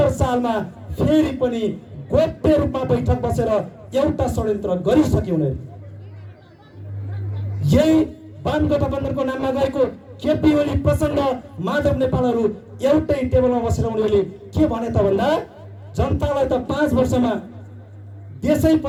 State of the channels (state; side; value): identical; both; correlation 1.00